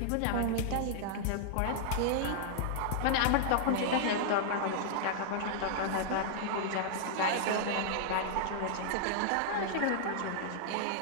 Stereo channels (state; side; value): different; both; correlation -0.01